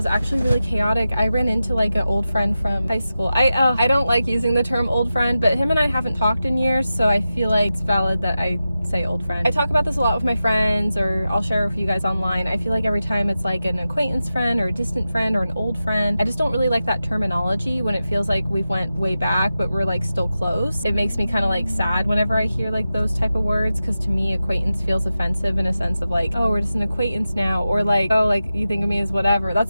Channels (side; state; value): both; inverted; correlation -0.92